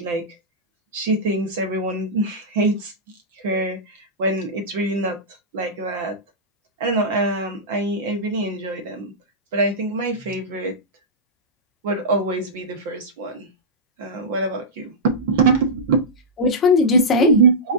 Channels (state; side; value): normal; both; correlation -0.10